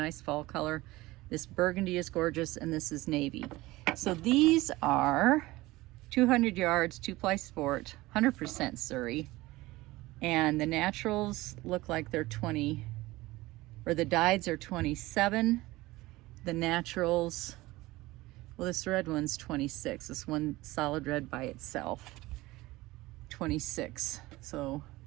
fall color. This burgundy is gorgeous, and this is navy. So these are 200 yards, 2-ply sport, 100% Suri. And the naturals look like they're 20, or the dyeds are 27. The naturals, well, this red one's 26. This one solid red by itself, 26. So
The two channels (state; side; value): quieter; left; 19.4 dB